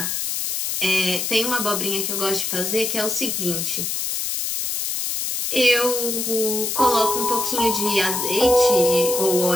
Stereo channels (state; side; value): noise; left; hiss, 2 dB below the sound